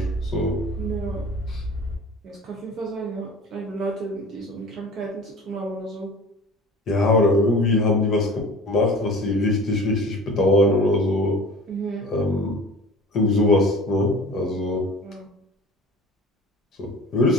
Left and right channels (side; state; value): both; normal; correlation 0.41